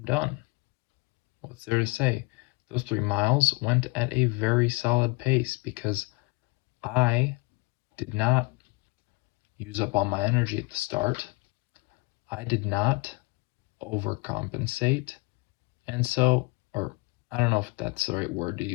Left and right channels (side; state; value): right; quieter; 26.6 dB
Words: done. What's there to say? Those 3 miles went at a very solid pace because I did not use up all my energy at the start. I did not overcompensate. And so, or I don't know if that's the right word to